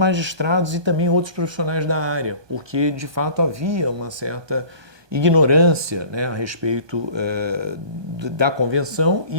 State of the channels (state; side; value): late; left; 1.2 ms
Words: e também outros profissionais da área, porque de fato havia uma certa ignorância, né, a respeito da convenção